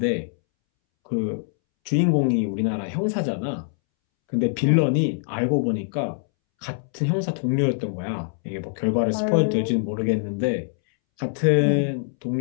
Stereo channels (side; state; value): right; silent; 63 dB below the other